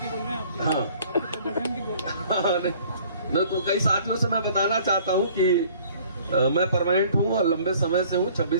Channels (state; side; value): inverted; both; correlation -0.54